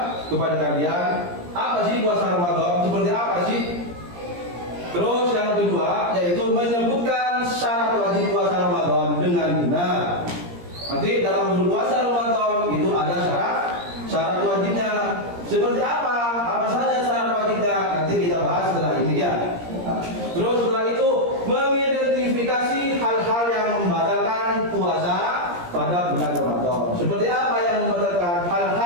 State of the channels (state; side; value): late; left; 17 ms